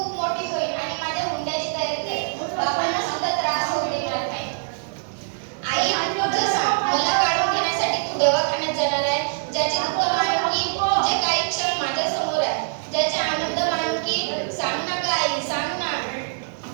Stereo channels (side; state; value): left; silent; digital silence